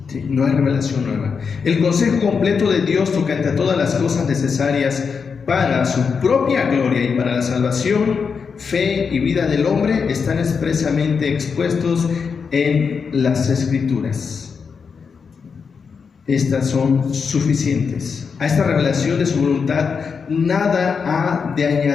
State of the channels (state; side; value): quieter; right; 5.8 dB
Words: ¿Sí? No hay revelación nueva. El consejo completo de Dios tocante a todas las cosas necesarias para su propia gloria y para la salvación, fe y vida del hombre están expresamente expuestos en las Escrituras. Estas son suficientes. A esta revelación de su voluntad nada ha de